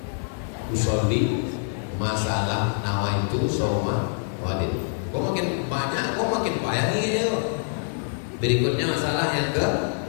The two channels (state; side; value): silent; right; 62 dB below the other